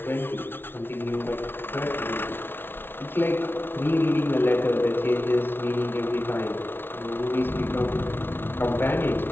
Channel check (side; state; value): right; late; 0.11 ms